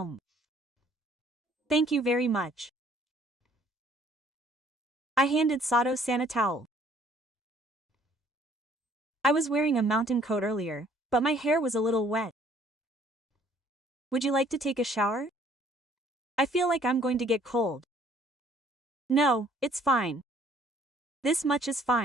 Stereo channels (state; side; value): normal; both; correlation 0.60